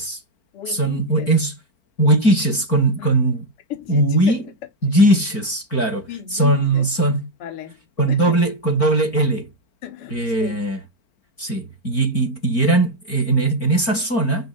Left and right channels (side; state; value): right; late; 4.4 ms